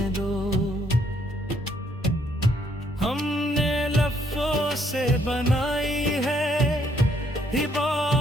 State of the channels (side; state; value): both; normal; correlation 0.70